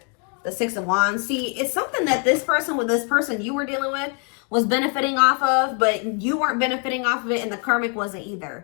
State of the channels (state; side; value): quieter; right; 36.7 dB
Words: the Six of Wands? See, it's something that this person with this person you were dealing with was benefiting off of, but you weren't benefiting off of it, and the karmic wasn't